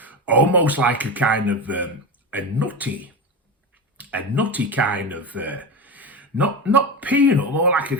almost like a kind of a nutty kind of, not peanut, more like a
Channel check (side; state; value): both; normal; correlation 0.21